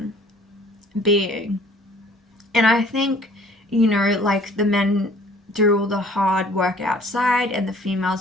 being. And I think, like, the men do all the hard work outside and the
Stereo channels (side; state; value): both; normal; correlation 0.54